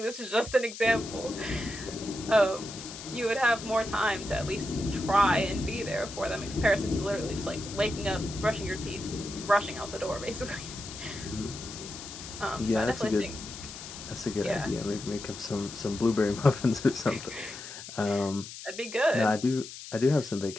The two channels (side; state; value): left; noise; hiss, 12 dB below the sound